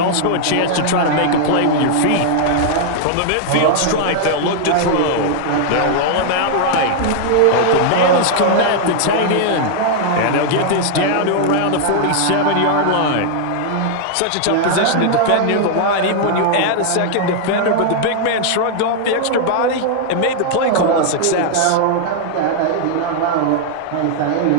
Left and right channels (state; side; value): different; both; correlation -0.01